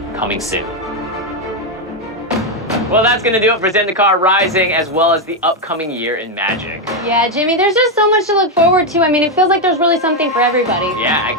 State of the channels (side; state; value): both; normal; correlation 0.04